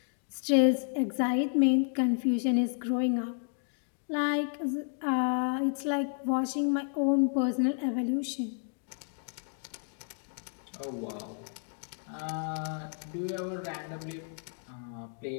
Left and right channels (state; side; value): silent; right; 57 dB below the other